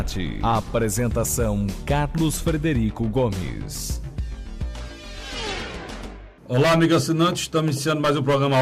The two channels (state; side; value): identical; both; correlation 1.00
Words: Apresentação: Carlos Frederico Gomes. Olá, amigo assinante, estamos iniciando mais um programa A